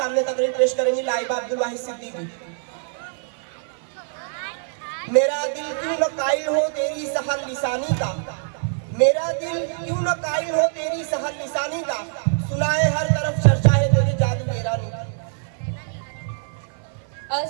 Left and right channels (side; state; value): left; silent; 56 dB below the other